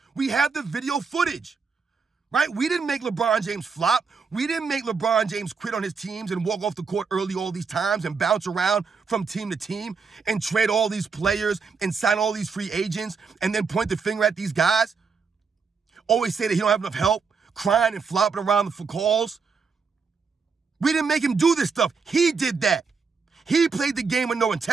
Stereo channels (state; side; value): quieter; left; 5.3 dB